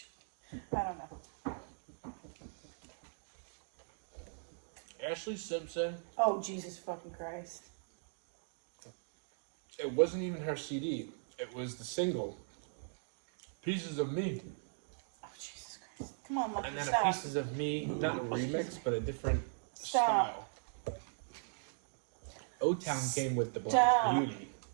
I don't know. Ashley Simpson. Oh, Jesus fucking Christ. It wasn't even her CD. It was the single. Pieces of Me. Oh, Jesus Christ. Come on, Lucky, And then stop. a Pieces of Me, not a remix, but a different Stop. style. O-Town came with the Black Stop. Beauty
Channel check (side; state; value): left; silent; digital silence